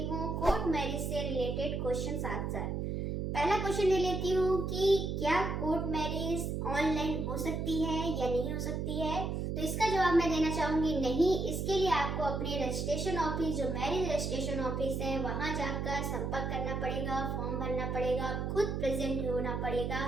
हूँ court marriage से रिलेटेड क्वेश्चन आंसर। पहला क्वेश्चन ले लेती हूँ कि क्या कोर्ट मैरिज ऑनलाइन हो सकती है या नहीं हो सकती है। तो इसका जवाब मैं देना चाहूंगी नहीं। इसके लिए आपको अपने रजिस्ट्रेशन ऑफिस, जो मैरिज रजिस्ट्रेशन ऑफिस है, वहां जाकर संपर्क करना पड़ेगा, फॉर्म भरना पड़ेगा, खुद प्रेजेंट होना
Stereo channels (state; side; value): noise; right; hum, 2 dB below the sound